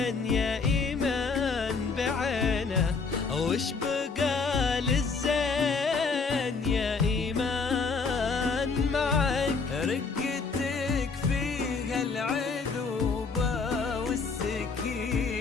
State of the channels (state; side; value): quieter; right; 4.6 dB